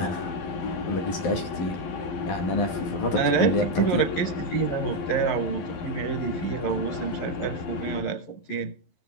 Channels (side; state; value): right; late; 11 ms